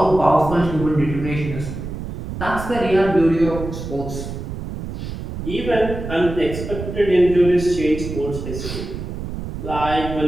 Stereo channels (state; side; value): noise; right; rumble, 8 dB below the sound